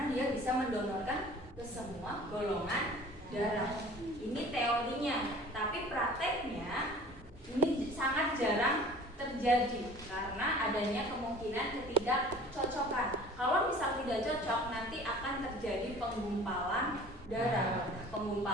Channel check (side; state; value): both; normal; correlation 0.46